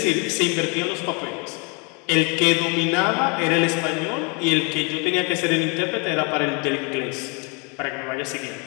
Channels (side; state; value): right; quieter; 32.7 dB